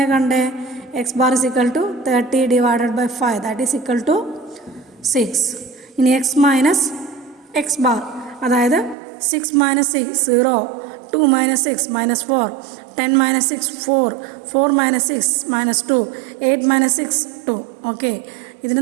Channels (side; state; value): left; drops out; at 9.0 s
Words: കണ്ടേ? X bar is equal to 30 divided by 5 that is equal to 6. ഇനി എക്സ് മൈനസ് എക്സ് ബാർ, അതായത് 6 minus 6 0, 2 minus 6 minus 4, 10 minus 6 4, 4 minus 6 minus 2, 8 minus 6 2. Okay,